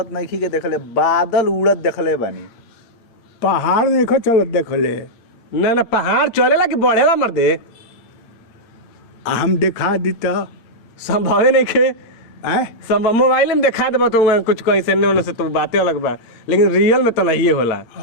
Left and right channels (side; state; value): right; late; 8.7 ms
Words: नहीं के देखले, बादल उड़त देखले बानी। पहाड़ देखो चलत देखले, ना ना पहाड़ चलेला कि बढ़ेला मर्दे? हम देखा दीता संभवे नहीं खे। है संभव मोबाइल में दिखा देबा तो कुछ कैसे ने से तो बातें अलग बा, लेकिन रियल में तो नहीं होला।